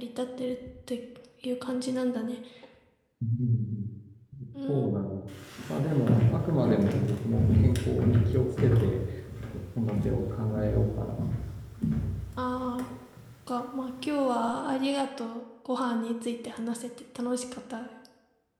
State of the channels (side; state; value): both; identical; correlation 1.00